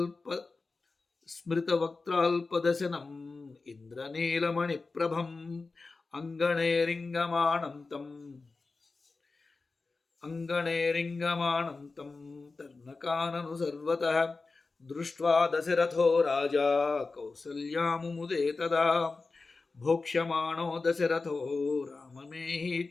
స్మృతవక్త్రాల్పదశనం ఇంద్రనీలమణిప్రభం అంగణేరింగమాణం తం తర్ణకానను సర్వతః దృష్ట్వా దశరథో రాజా కౌసల్యాముముదే తదా భోక్ష్యమాణో దశరథో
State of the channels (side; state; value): right; quieter; 3.9 dB